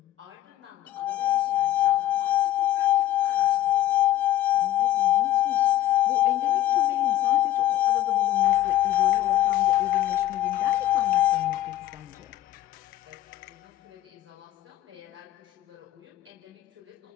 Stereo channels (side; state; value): right; quieter; 13.7 dB